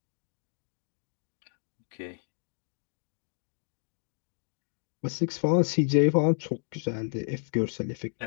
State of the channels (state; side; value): silent; right; 57 dB below the other